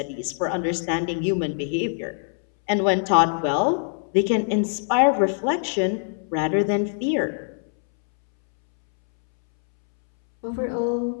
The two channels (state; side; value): silent; right; 63 dB below the other